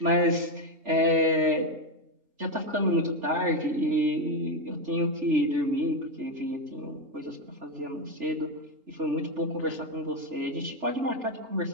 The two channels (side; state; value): left; late; 3.4 ms